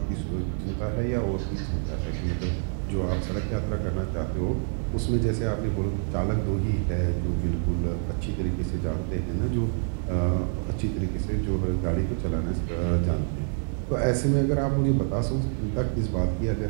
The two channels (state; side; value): silent; left; 57 dB below the other